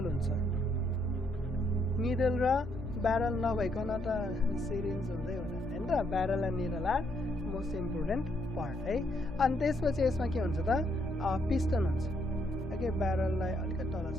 हुन्छ निडल र ब्यारल नभइकन त सिरिन्ज हुँदै हुँदैन हैन त barrel and needle are most important part है अनि त्यसपछि यसमा के हुन्छ त पिस्टन हुन्छ ओके ब्यारललाई अलिकति तल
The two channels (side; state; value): both; normal; correlation 0.73